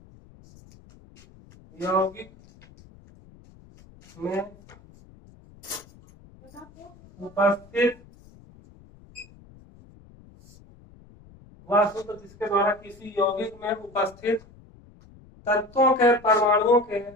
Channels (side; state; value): left; noise; rumble, 24 dB below the sound